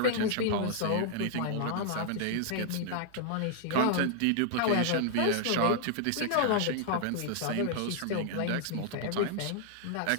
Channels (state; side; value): different; both; correlation 0.00